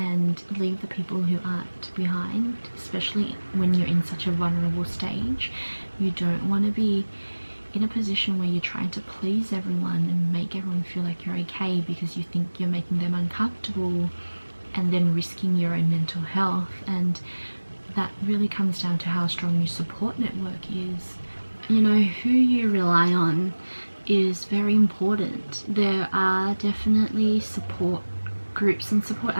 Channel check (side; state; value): both; inverted; correlation -1.00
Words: leave the people who aren't behind, especially when you're in such a vulnerable stage. You don't want to be in a position where you're trying to please everyone and make everyone feel like you're okay because you think you're making them uncomfortable, and then risking your own mental health. And that really comes down to how strong your support network is. Who you rely on is very important. There are definitely support groups and support